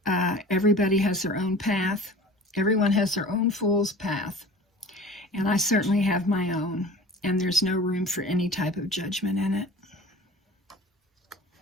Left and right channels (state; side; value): normal; both; correlation 0.41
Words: Everybody has their own path. Everyone has their own fool's path. And I certainly have my own. And there's no room for any type of judgment in it.